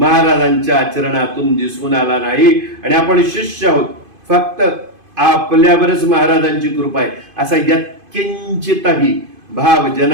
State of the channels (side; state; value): left; late; 2.5 ms